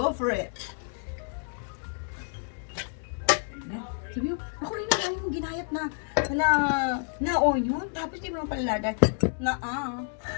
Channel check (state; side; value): silent; right; 59 dB below the other